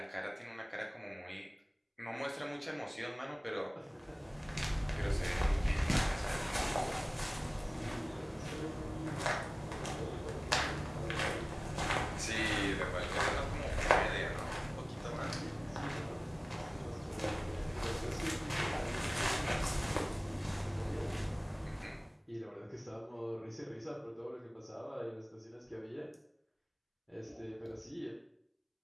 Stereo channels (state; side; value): identical; both; correlation 1.00